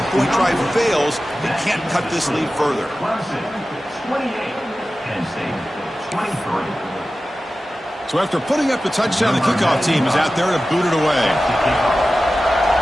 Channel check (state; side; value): normal; both; correlation 0.95